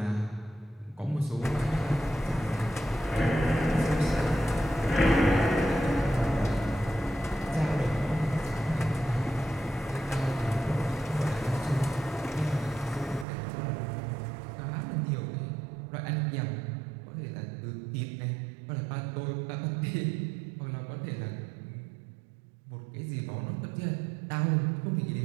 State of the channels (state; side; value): drops out; left; at 13.2 s